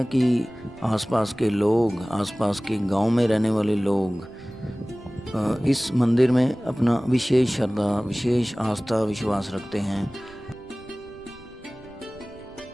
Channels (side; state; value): right; noise; rumble, 23 dB below the sound